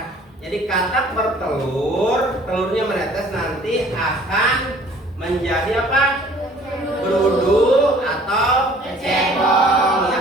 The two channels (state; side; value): normal; both; correlation 0.53